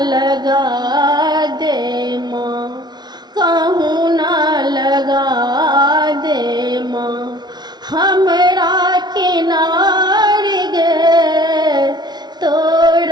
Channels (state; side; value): late; left; 0.20 ms